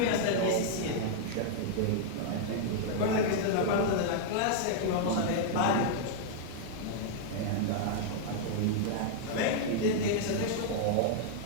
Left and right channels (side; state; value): both; different; correlation -0.01